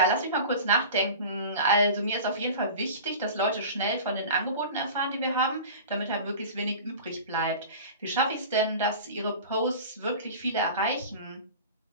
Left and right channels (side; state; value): both; inverted; correlation -0.36